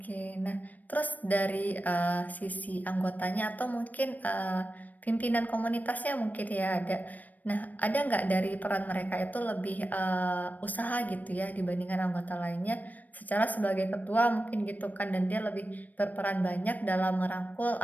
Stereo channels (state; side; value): late; right; 0.080 ms